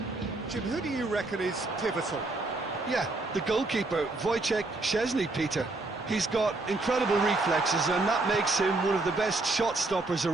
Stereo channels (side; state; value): left; quieter; 3.1 dB